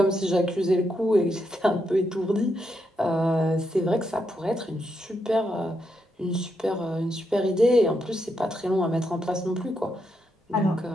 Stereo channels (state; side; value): normal; both; correlation 0.81